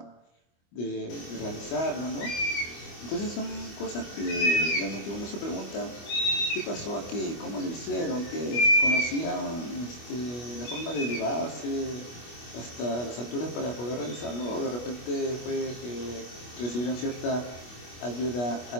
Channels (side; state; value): right; late; 25 ms